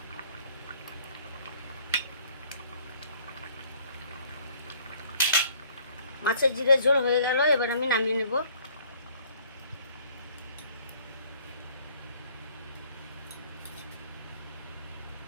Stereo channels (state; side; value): inverted; both; correlation -0.58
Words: মাছের জিরে ঝোল হয়ে গেল, এবার আমি নামিয়ে নেব।